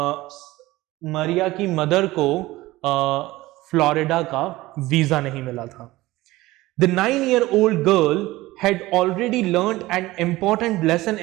मारिया की मदर को फ्लोरिडा का वीजा नहीं मिला था। The 9-year-old girl had already learned an important lesson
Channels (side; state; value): left; quieter; 18.5 dB